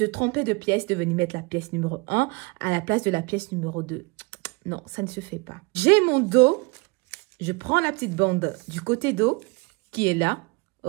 tromper de pièce, de venir mettre la pièce numéro 1 à la place de la pièce numéro 2. Non, ça ne se fait pas. J'ai mon dos, je prends la petite bande du côté dos qui est là,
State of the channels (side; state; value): left; quieter; 27.6 dB